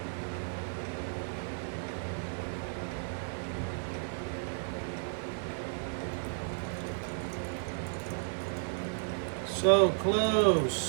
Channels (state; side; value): silent; left; 55 dB below the other